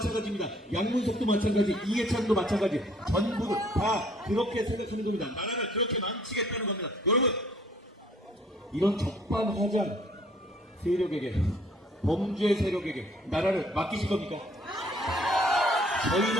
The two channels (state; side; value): normal; both; correlation 0.60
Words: 양문석도 마찬가지, 이해찬도 마찬가지. 전부 다 그렇게 생각하는 겁니다. 나라를 그렇게 망치겠다는 겁니다. 여러분, 이런 적반하장 세력에게, 범죄 세력에게 나라를 맡기실 겁니까?